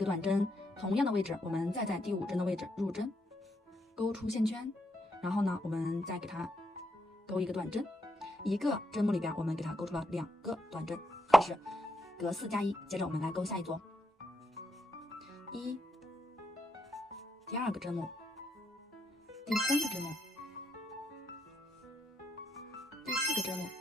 短针，同样的位置，我们再在第5针的位置入针，勾出线圈，然后呢，我们再给它勾1个短针，一个针目里边我们给它勾出了2个短针，这是隔4加1。接着我们来勾下一组，1，第2个针目，第3个针目，第4个针目。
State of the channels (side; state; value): both; normal; correlation 0.79